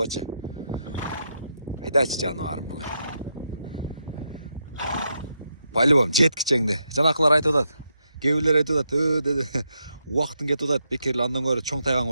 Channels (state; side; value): inverted; both; correlation -0.82